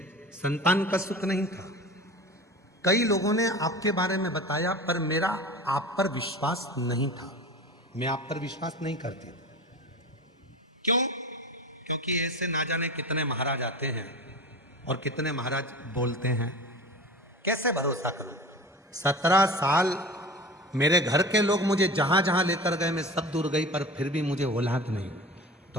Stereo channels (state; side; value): normal; both; correlation 0.34